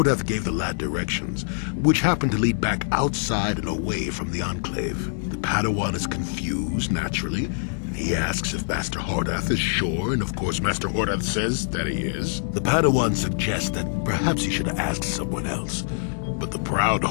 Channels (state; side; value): silent; right; digital silence